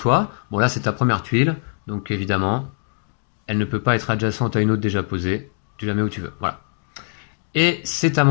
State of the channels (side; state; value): right; silent; digital silence